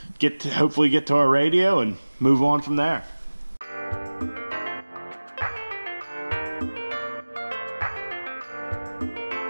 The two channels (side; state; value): both; inverted; correlation -1.00